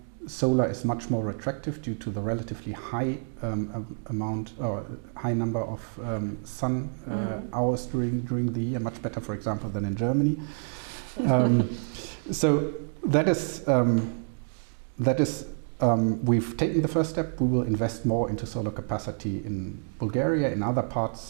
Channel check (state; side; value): silent; left; digital silence